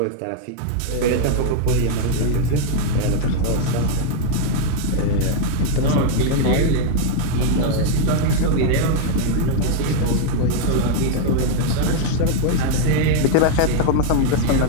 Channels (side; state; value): both; different; correlation 0.00